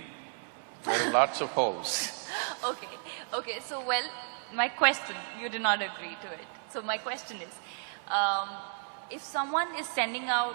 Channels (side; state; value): left; silent; 56 dB below the other